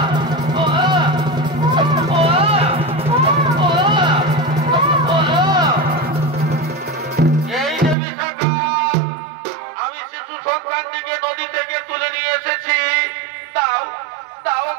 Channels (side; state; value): left; drops out; at 8.0 s